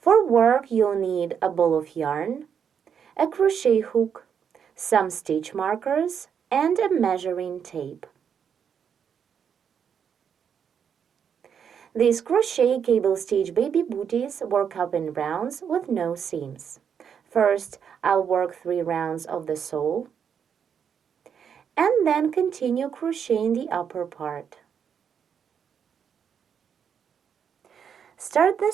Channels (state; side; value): quieter; left; 7.6 dB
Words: work, you'll need a ball of yarn, a crochet hook, some stitch markers, and a measuring tape. These crochet cable stitch baby booties work up in rounds with no seams. First, I'll work 3 rounds of the sole, and then continue crocheting the upper part. Start the